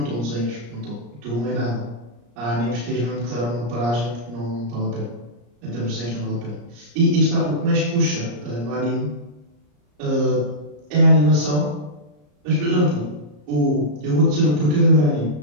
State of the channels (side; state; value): left; late; 34 ms